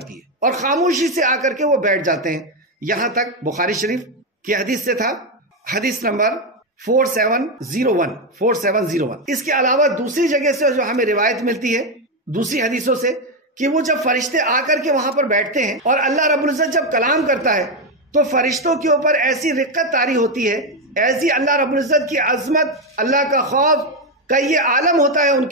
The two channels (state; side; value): normal; both; correlation 0.08